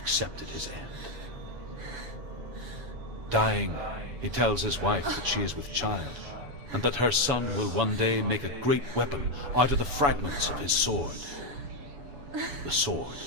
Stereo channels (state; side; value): late; left; 7.0 ms